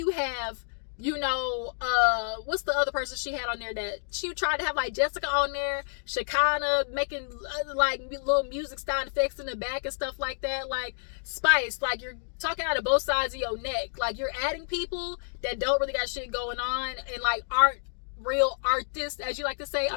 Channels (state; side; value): silent; right; digital silence